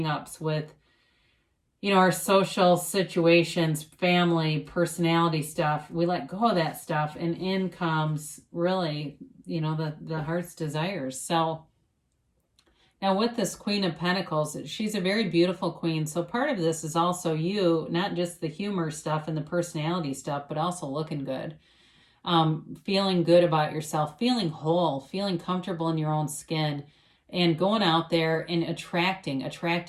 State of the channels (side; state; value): both; identical; correlation 1.00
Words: with, you know, our social situations, family, personality stuff, we let go of that stuff, and in comes really, you know, the heart's desires. So now with this Queen of Pentacles, she's a very beautiful queen. So part of this is also you, not just the humor stuff and the personality stuff, but also looking good. Feeling good about yourself, feeling whole, feeling comfortable in your own skin, and going out there and attracting.